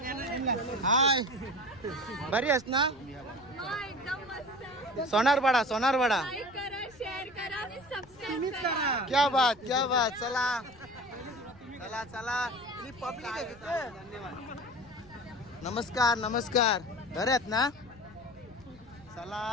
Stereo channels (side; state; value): left; noise; rumble, 24 dB below the sound